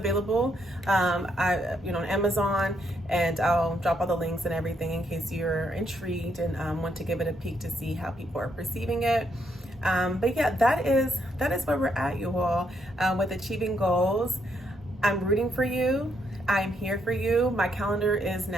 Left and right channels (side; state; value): both; normal; correlation 0.76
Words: on Amazon, and I'll drop all the links and everything in case you're intrigued and want to give it a peek to see how people are perceiving it. But yeah, that is where we're at, you all, with achieving goals. I'm rooting for you. I'm here for you. My calendar is